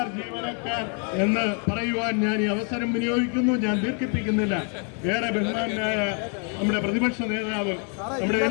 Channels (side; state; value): right; quieter; 39.7 dB